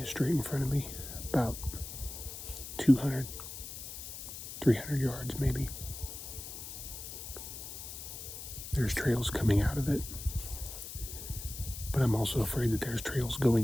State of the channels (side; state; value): left; noise; hiss, 9 dB below the sound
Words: straight in front of me, about 200, 300 yards maybe. There's trails coming out of it, but I'm also afraid that there's trails